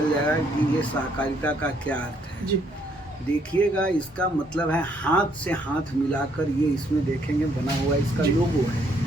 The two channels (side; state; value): both; normal; correlation 0.69